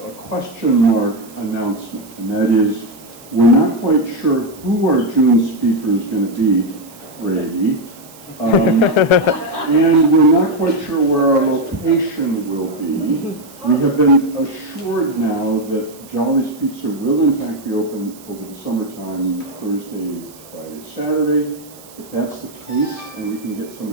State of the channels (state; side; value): noise; right; hiss, 22 dB below the sound